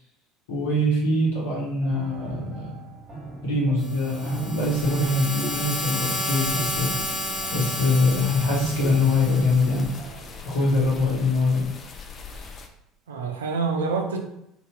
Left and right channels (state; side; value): normal; both; correlation 0.60